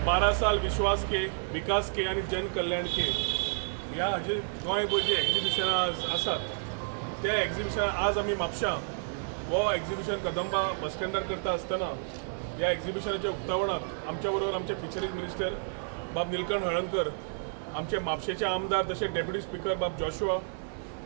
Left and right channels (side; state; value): left; silent; digital silence